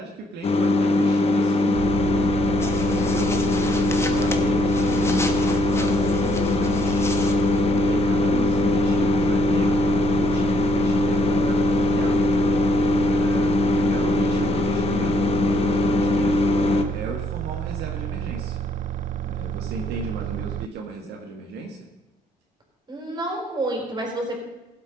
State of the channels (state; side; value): normal; both; correlation 0.70